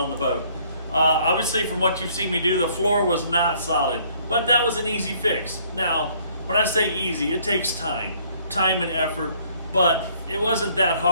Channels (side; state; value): both; inverted; correlation -0.62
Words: the boat. Obviously, from what you've seen me do, the floor was not solid, but that was an easy fix. Now, when I say easy, it takes time and effort, but it wasn't that